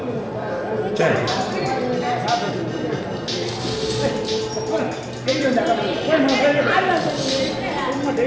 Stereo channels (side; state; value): both; identical; correlation 1.00